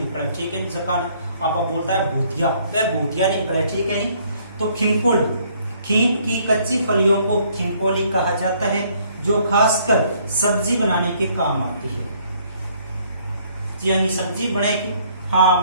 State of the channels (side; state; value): both; inverted; correlation -0.64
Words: ठीक है। जकान आप बोलता है भूतिया, वह भूतिया निकले, ठीक है। नहीं तो खिंपोली, खींप की कच्ची फलियों को खिंपोली कहा जाता है, जो खासकर सब्जी बनाने के काम आती है। यानी सब्जी बनेगी। हाँ,